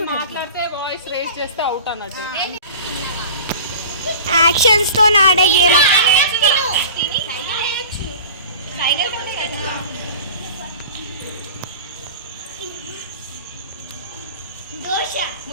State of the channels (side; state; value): both; inverted; correlation -0.39